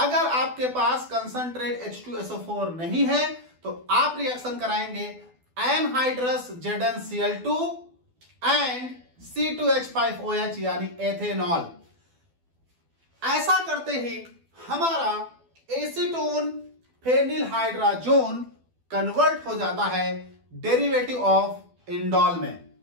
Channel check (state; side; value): late; left; 12 ms